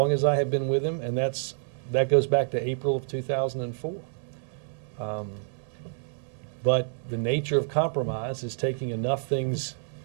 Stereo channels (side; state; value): left; silent; 59 dB below the other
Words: as I have been with him, and that goes back to April of 2004. But the nature of compromise is taking enough things